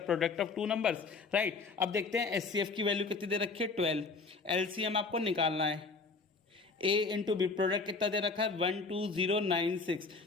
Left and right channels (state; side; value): quieter; right; 4.2 dB